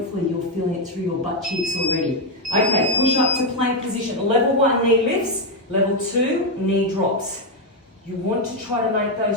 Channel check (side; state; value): both; normal; correlation 0.04